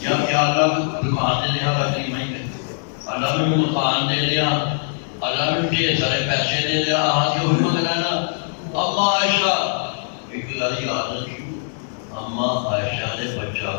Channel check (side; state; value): right; silent; digital silence